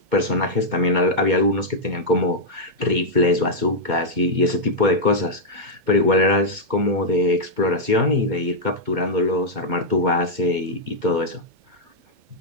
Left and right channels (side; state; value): left; late; 2.2 ms